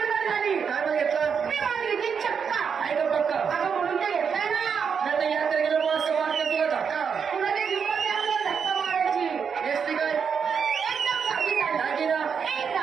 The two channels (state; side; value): quieter; left; 6.6 dB